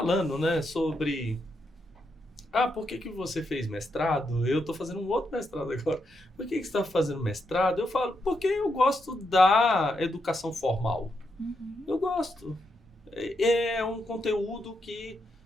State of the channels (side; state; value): both; normal; correlation 0.82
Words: né, sobre por que você fez mestrado? Eu estou fazendo um outro mestrado agora. Por que você está fazendo mestrado? Eu falo, porque eu gosto da educação formal. Uhum. Eu gosto. É um conteúdo que